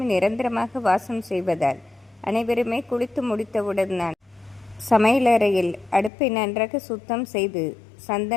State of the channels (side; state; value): right; drops out; at 6.1 s